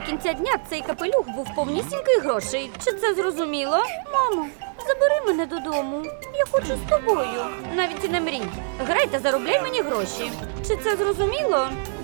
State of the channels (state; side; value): silent; left; 63 dB below the other